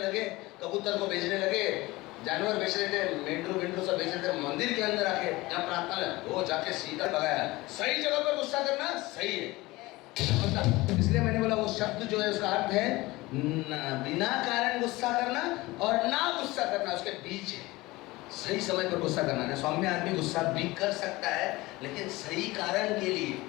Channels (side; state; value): right; quieter; 20.6 dB